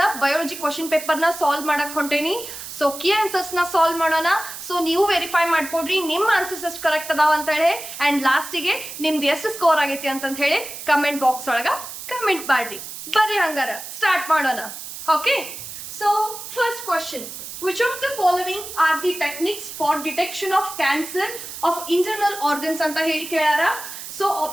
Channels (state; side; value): noise; right; hiss, 10 dB below the sound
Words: ಬಯಾಲಜಿ ಕ್ವಶನ್ ಪೇಪರ್ ನ ಸಾಲ್ವ್ ಮಾಡಕ್ ಹೊಂಟೇನಿ. ಸೊ ಕೀ ಆನ್ಸರ್ಸ್ ನ ಸಾಲ್ವ್ ಮಾಡೋಣ. ಸೊ ನೀವು ವೆರಿಫೈ ಮಾಡ್ಕೊಡ್ರಿ ನಿಮ್ಮ ಆನ್ಸರ್ಸ್ ಎಷ್ಟು ಕರೆಕ್ಟ್ ಅದಾವ ಅಂತ ಹೇಳಿ ಅಂಡ್ ಲಾಸ್ಟಿಗೆ ನಿಮ್ದು ಎಷ್ಟು ಸ್ಕೋರ್ ಆಗೈತಿ ಅಂತ ಹೇಳಿ ಕಮೆಂಟ್ ಬಾಕ್ಸ್ ಒಳಗ ಕಮೆಂಟ್ ಮಾಡ್ರಿ. ಬರ್ರಿ ಹಂಗಾರ ಸ್ಟಾರ್ಟ್ ಮಾಡೋಣ. Okay, so first question. Which of the following are the techniques for detection of cancer of internal organs anta heli kelara? So